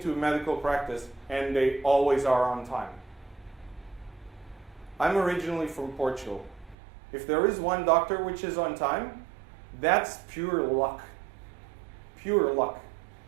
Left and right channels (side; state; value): left; drops out; at 6.8 s